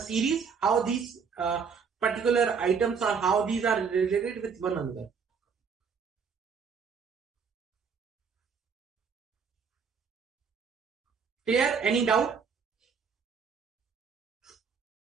how these particular items or how these are related with one another. Clear? Any doubt?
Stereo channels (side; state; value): left; quieter; 6.0 dB